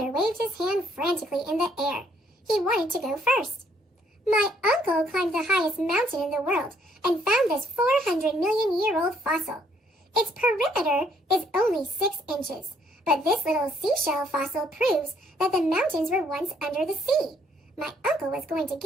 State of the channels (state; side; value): normal; both; correlation 0.66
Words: waved his hand frantically in the air. He wanted to go first. My uncle climbed the highest mountain in the world and found this 400-million-year-old fossil. Its perimeter is only 6 inches, but this little seashell fossil proves that the mountains were once under the sea. My uncle was going to